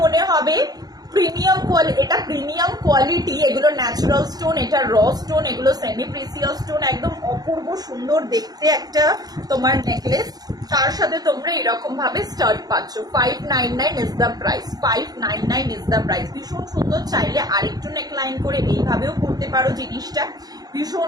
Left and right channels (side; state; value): left; late; 0.19 ms